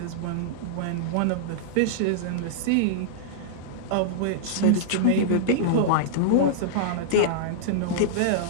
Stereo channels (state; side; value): different; both; correlation -0.02